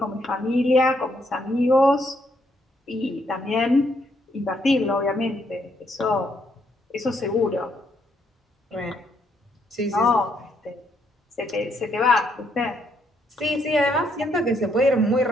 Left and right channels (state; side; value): normal; both; correlation 0.73